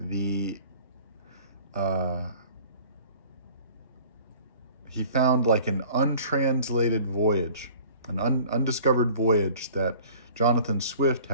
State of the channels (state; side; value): inverted; both; correlation -0.48